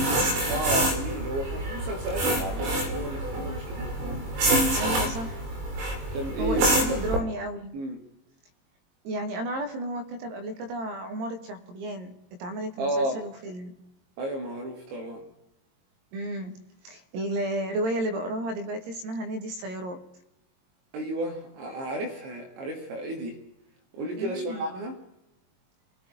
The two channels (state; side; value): late; left; 22 ms